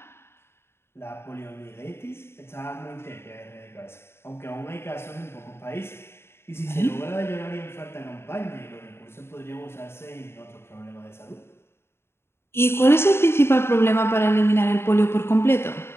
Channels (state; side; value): late; right; 0.12 ms